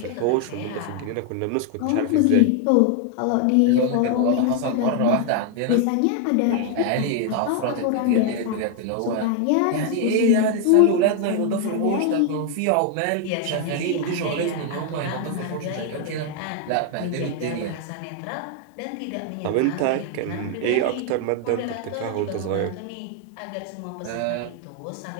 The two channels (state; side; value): different; both; correlation 0.00